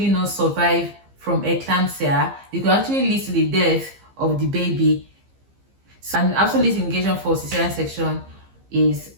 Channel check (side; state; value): left; late; 15 ms